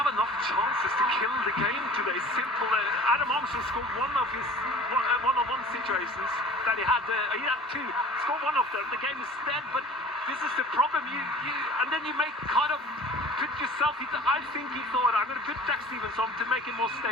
enough chances to kill the game today. Simple. Adam Armstrong scored one of his one-on-one situations that he had. He had two. Scored one of them. The game is dead. But this is the problem. And then you make kind of put yourself. I think he thought, I'm going to put Jack Stevens on to make it more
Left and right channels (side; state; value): both; normal; correlation 0.42